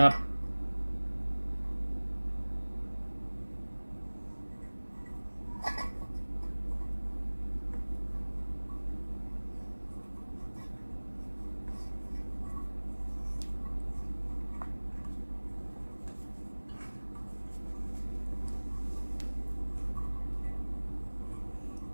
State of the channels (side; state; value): both; inverted; correlation -1.00